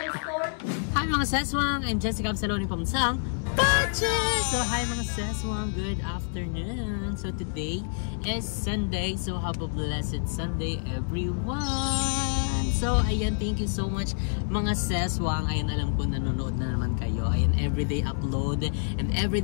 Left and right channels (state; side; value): silent; right; digital silence